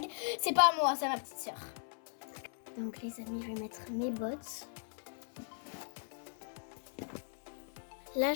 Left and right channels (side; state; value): right; silent; 52 dB below the other